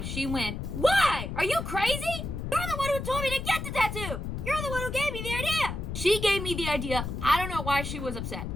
she went, why? Are you crazy? You're the one who told me to get the tattoo! You're the one who gave me the idea! She gave me the idea. I don't know why she was upset.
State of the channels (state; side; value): noise; left; rumble, 5 dB below the sound